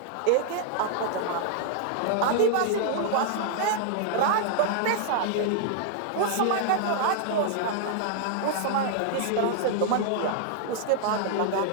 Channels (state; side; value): different; both; correlation -0.01